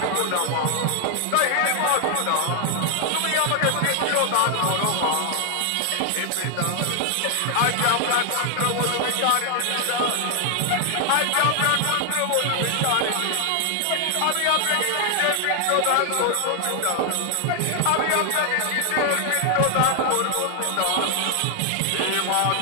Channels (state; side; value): different; both; correlation 0.00